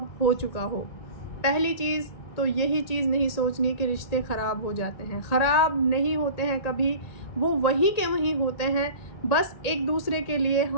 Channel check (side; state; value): right; late; 1.8 ms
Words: हो चुका हो। पहली चीज़ तो यही चीज़ नहीं सोचनी कि रिश्ते ख़राब हो जाते हैं। ख़राब नहीं होते हैं कभी, वो वहीं के वहीं होते हैं। बस एक दूसरे के लिए